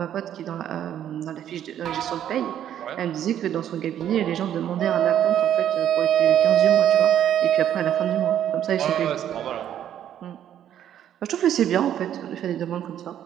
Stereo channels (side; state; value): left; quieter; 10.5 dB